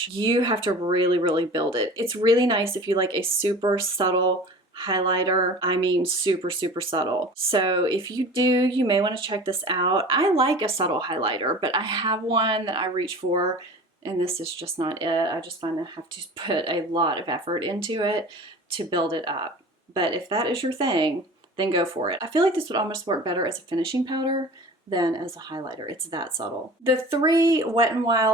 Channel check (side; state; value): both; normal; correlation 0.40